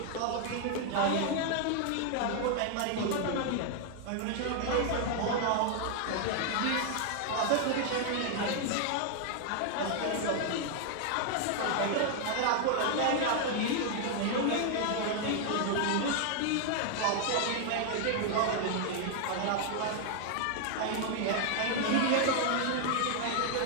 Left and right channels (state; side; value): different; both; correlation 0.00